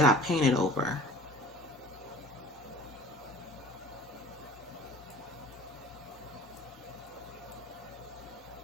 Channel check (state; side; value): normal; both; correlation 0.46